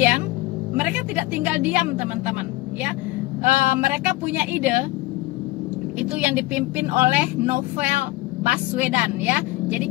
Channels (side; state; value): right; quieter; 19.3 dB